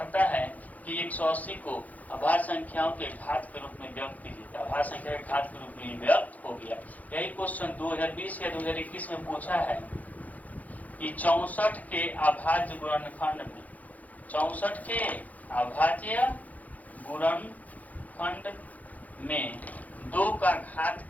है कि 180 को अभाज्य संख्याओं के घात के रूप में व्यक्त कीजिए। अभाज्य संख्या के घात के रूप में व्यक्त हो गया। यही क्वेश्चन 2020 या 2021 में पूछा है कि 64 के अभाज्य गुणनखंड में, 64 के अभाज्य गुणनखंड में 2 का घात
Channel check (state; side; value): late; right; 0.077 ms